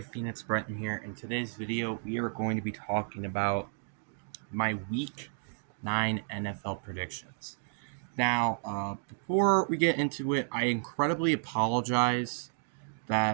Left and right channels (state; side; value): silent; left; digital silence